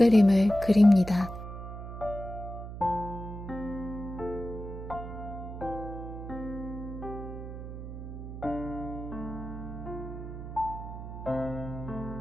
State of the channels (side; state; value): right; noise; hum, 9 dB below the sound